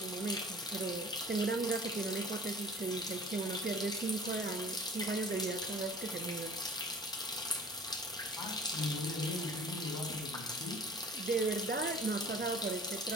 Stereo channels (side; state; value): both; normal; correlation 0.48